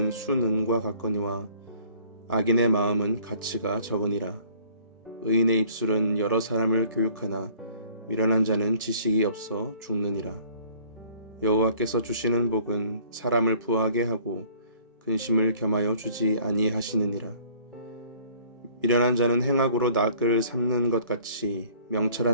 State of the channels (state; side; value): inverted; both; correlation -0.55